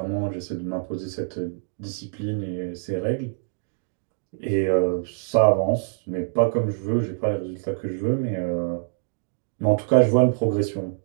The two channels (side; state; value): left; silent; digital silence